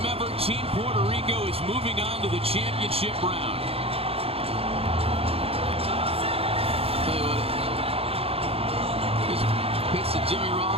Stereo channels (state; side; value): late; left; 0.28 ms